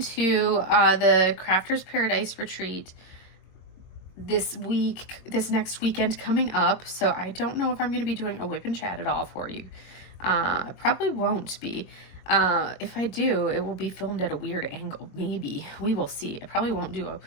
to the Crafters Paradise retreat this next weekend coming up. So I don't know if I'm going to be doing a whip and chat at all for you. I probably won't be. If I do, it will be filmed at a weird angle. Maybe. We will see. I probably won't do a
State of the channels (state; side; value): late; right; 22 ms